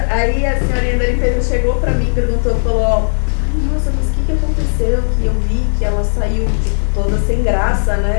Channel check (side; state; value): right; silent; digital silence